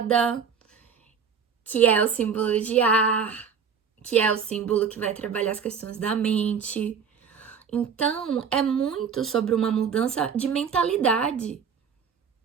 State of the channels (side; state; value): left; quieter; 6.6 dB